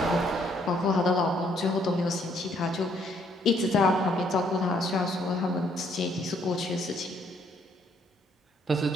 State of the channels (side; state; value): both; normal; correlation 0.68